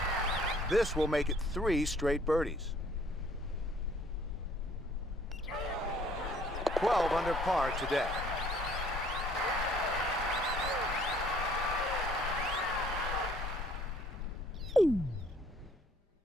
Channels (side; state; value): both; normal; correlation 0.59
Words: This will make it 3 straight birdies. 12 under par today.